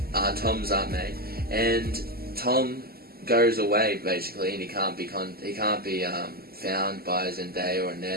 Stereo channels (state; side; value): late; left; 0.45 ms